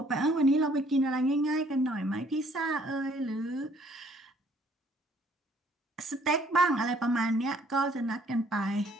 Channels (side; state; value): both; normal; correlation 0.62